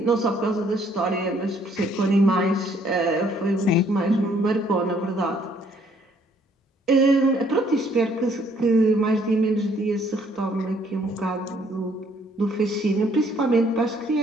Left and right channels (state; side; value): normal; both; correlation 0.65